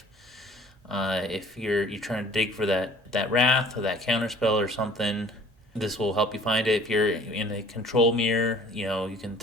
If you're trying to dig for that wrath or that counter spell or something, this will help you find it. If you're in a control mirror, you can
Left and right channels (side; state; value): both; normal; correlation 0.50